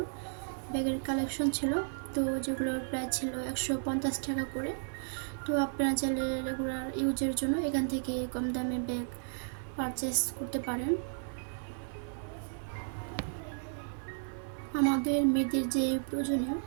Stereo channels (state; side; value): silent; left; 55 dB below the other